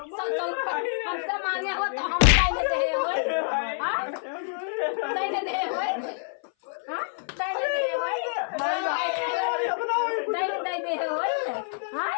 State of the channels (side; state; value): right; silent; 57 dB below the other